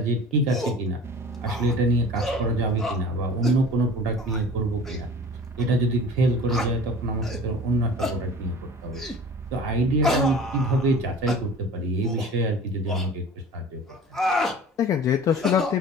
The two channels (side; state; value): both; normal; correlation 0.42